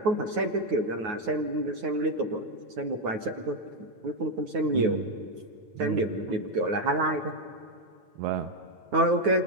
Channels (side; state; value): left; late; 9.4 ms